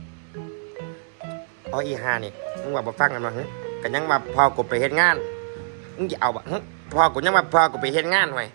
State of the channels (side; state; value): left; silent; 63 dB below the other